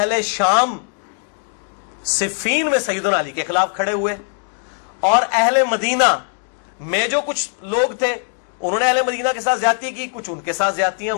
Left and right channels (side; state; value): right; silent; 59 dB below the other